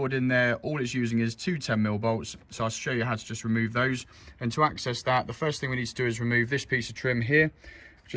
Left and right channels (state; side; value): identical; both; correlation 1.00